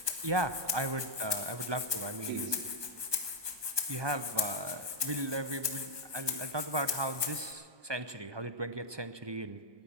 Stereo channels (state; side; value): late; left; 1.2 ms